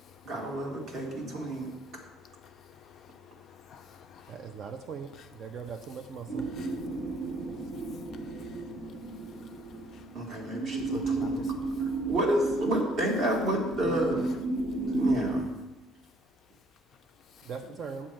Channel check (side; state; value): both; normal; correlation 0.63